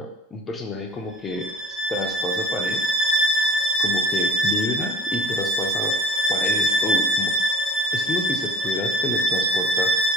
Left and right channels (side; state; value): both; normal; correlation 0.45